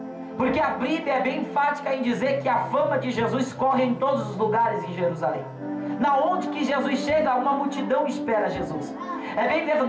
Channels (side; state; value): both; identical; correlation 1.00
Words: porque a Bíblia é bem enfática em dizer que a fama de Jesus corre em todos os lugares em Jerusalém. Na onde que Jesus chega, uma multidão espera Jesus. É bem